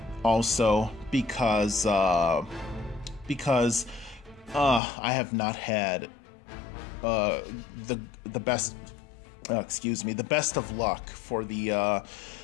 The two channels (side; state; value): right; drops out; at 4.8 s